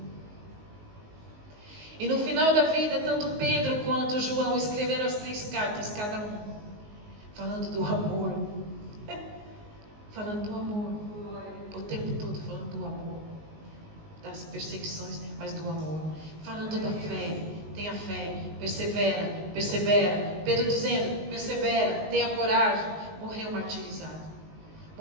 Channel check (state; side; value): late; left; 19 ms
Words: E no final da vida, tanto Pedro quanto João escreveram as 3 cartas, cada um, falando do amor. Falando do amor. O tempo todo falando do amor. Das perseguições, mas do amor. Falando da fé. Tenha fé. Persevera. Persevera. Pedro dizendo: persevera. Tenha coragem. Morreu martirizado.